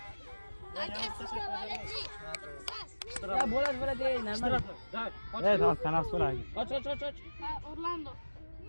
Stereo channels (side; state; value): both; inverted; correlation -1.00